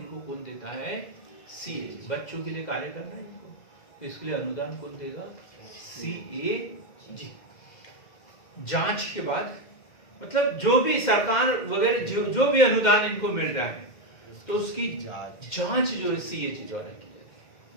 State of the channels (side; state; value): right; late; 2.1 ms